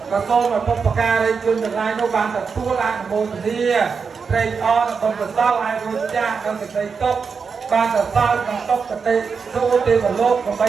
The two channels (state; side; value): quieter; left; 5.5 dB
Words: ក៏សូមឲ្យបុព្វការីជនទាំងឡាយនោះបានទទួលអនុមោទនាត្រេកអរដល់កសលឲ្យរួចចាស់ដល់សេចក្តីទុកបានសរសើរក្នុងទុកកតិទូទេវលោកដើម្បី